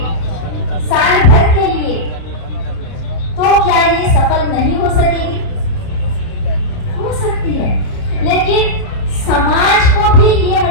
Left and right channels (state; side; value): late; right; 30 ms